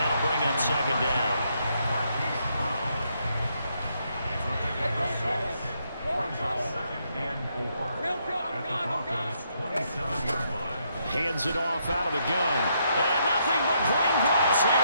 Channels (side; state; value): both; inverted; correlation -0.76